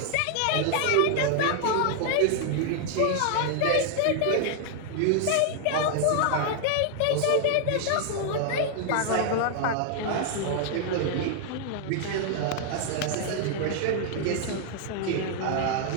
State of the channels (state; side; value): different; both; correlation 0.00